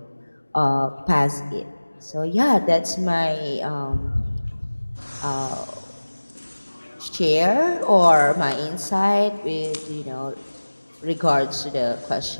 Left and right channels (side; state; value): both; inverted; correlation -1.00